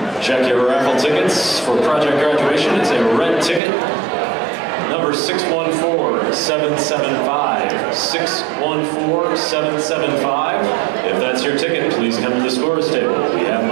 Check your raffle tickets for project graduation. It's a red ticket. Number 614-775. 614-775. If that's your ticket, please come to the scores table. We have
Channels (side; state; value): left; drops out; at 3.6 s